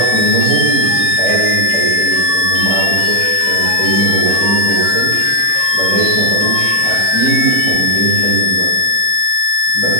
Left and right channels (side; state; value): left; late; 4.7 ms